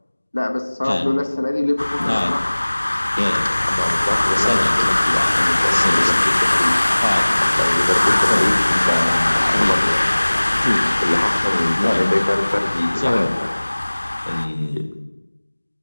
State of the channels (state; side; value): inverted; both; correlation -1.00